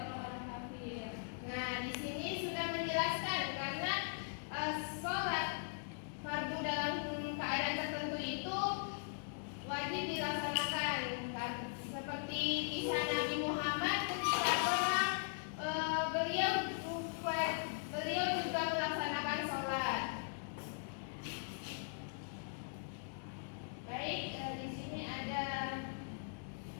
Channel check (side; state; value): right; silent; digital silence